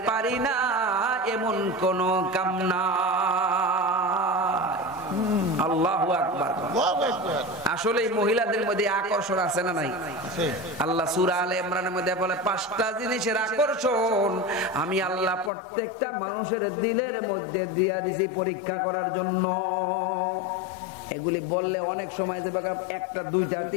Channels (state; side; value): drops out; right; at 15.5 s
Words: পারি না এমন কোন কাম না। আল্লাহু আকবার। আসলে মহিলাদের মধ্যে আকর্ষণ আছে না নাই? আল্লাহ সূরা আলে ইমরানের মধ্যে বলে 5টা জিনিসের আকর্ষণ আমি আল্লাহ প্রত্যেকটা মানুষের দিলের মধ্যে দিয়া দিছি পরীক্ষা করার জন্য। এগুলি বললে অনেক সময় যে একটা দুইটা